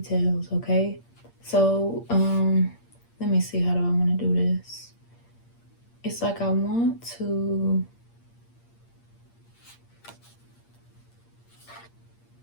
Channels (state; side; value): late; right; 8.6 ms